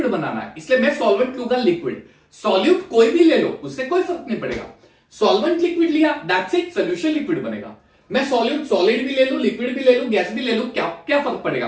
बनाना है, इसलिए मैं सॉल्वेंट लूंगा लिक्विड। सॉल्यूट कोई भी ले लो उससे कोई फर्क नहीं पड़ेगा, सॉल्वेंट लिक्विड लिया दैट्स इट, सोल्यूशन लिक्विड बनेगा। मैं सॉल्यूट सॉलिड भी ले लूं, लिक्विड भी ले लूं, गैस भी ले लूं, क्या क्या फर्क पड़ेगा,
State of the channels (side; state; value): both; identical; correlation 1.00